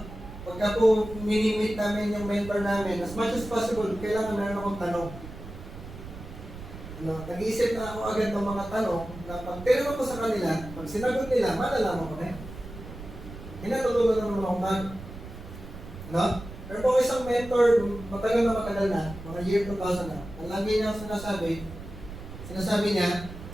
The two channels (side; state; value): right; noise; rumble, 13 dB below the sound